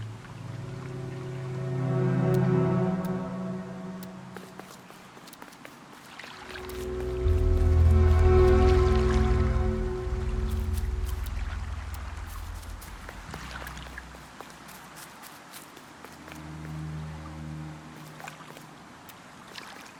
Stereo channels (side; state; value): both; identical; correlation 1.00